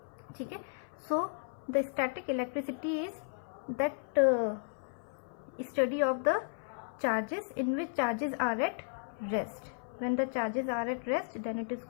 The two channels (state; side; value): silent; right; 55 dB below the other